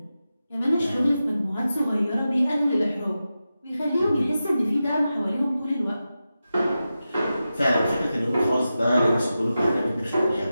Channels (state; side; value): inverted; both; correlation -0.92